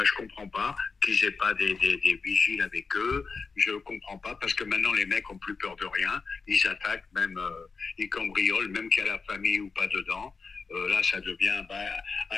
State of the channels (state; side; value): quieter; right; 4.7 dB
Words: comprends pas qu'ils aient pas des vigiles avec eux. Je comprends pas, parce que maintenant, les mecs ont plus peur de rien. Ils attaquent, même, ils cambriolent, même qu'il y a la famille ou pas dedans. Là, ça devient